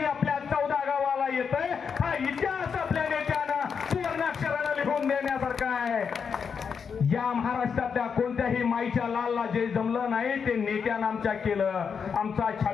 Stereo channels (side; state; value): right; quieter; 6.4 dB